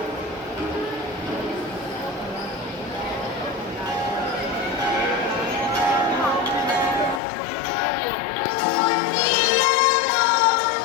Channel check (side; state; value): right; drops out; at 7.2 s